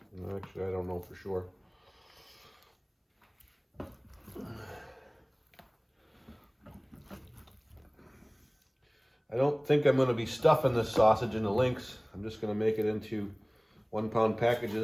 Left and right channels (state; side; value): identical; both; correlation 1.00